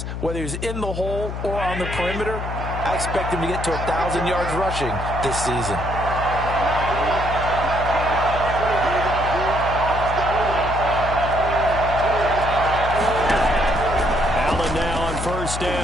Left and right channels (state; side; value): noise; left; hum, 6 dB below the sound